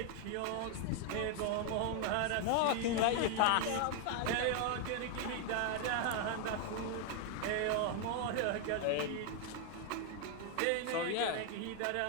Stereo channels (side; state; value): both; different; correlation 0.00